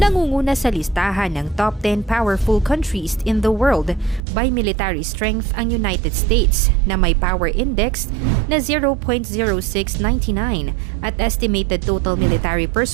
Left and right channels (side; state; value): left; drops out; at 4.2 s